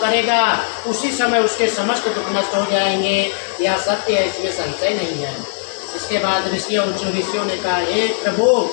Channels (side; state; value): right; silent; digital silence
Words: उसी समय उसके समस्त दुख नष्ट हो जाएंगे। यह सत्य है, इसमें संशय नहीं है। इसके बाद ऋषियों ने कहा, हे प्रभु,